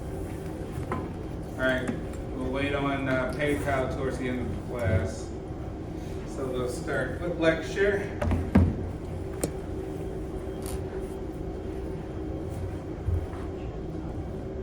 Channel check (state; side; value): identical; both; correlation 1.00